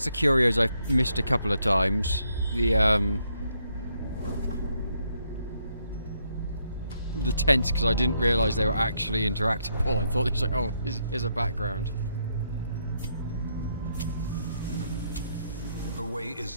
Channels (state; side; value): inverted; both; correlation -0.75